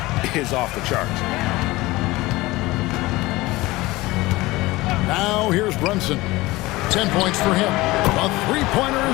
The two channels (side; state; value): right; quieter; 20.0 dB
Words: is off the charts. Now here's Brunson. 10 points for him. A three-pointer